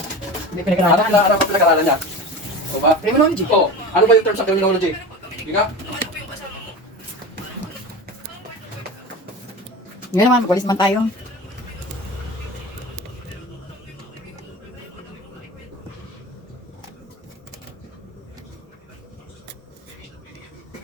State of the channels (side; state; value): both; normal; correlation 0.30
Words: Hindi pinag-aralan. Ano pa pinag-aralan niya? O ba? Criminology. Oo. Ano ba yung term sa criminology? Hindi ka? Ngayon naman, magwalis man tayo.